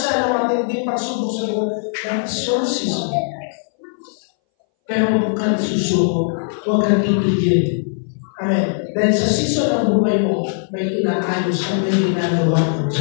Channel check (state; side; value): silent; right; 62 dB below the other